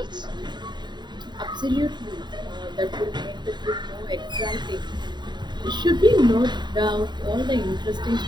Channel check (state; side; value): late; left; 0.21 ms